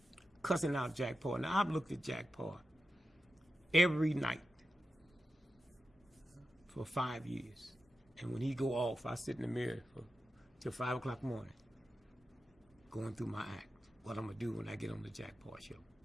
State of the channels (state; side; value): normal; both; correlation 0.91